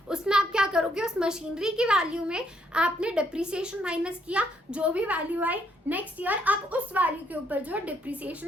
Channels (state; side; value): normal; both; correlation 0.72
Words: उसमें आप क्या करोगे, उस मशीनरी की वैल्यू में आपने डिप्रिसिएशन माइनस किया, जो भी वैल्यू आई नेक्स्ट ईयर आप उस वैल्यू के ऊपर जो